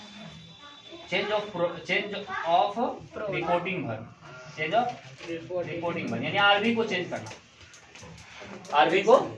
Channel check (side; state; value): both; identical; correlation 1.00